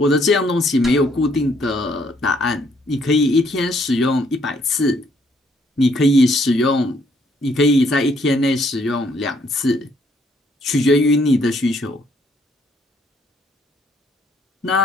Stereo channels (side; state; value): both; normal; correlation 0.68